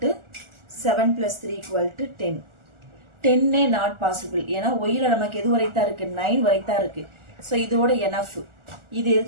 7 + 3 = 10. 10 not possible, ஏன்னா ஒய்ல நமக்கு எது வரைத்தான் இருக்கு, 9 வரைத்தான் இருக்கு. ஸோ இதோட எனஃப், இது எது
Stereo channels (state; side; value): late; left; 1.4 ms